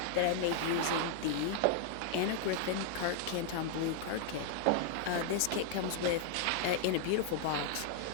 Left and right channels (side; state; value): both; different; correlation -0.01